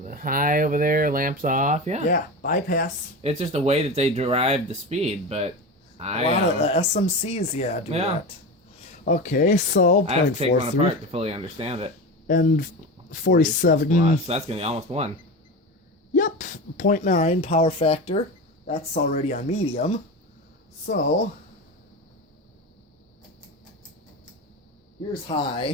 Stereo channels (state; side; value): normal; both; correlation 0.25